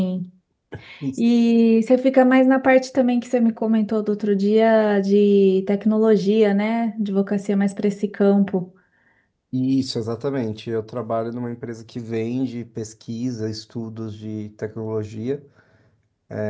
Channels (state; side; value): identical; both; correlation 1.00